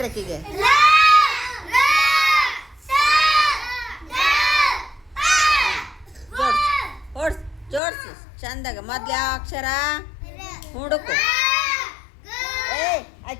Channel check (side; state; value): right; drops out; at 7.8 s